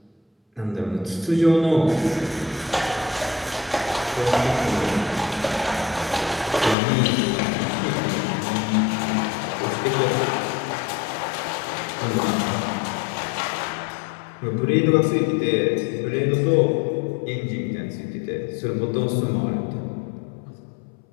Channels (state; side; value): drops out; right; at 6.8 s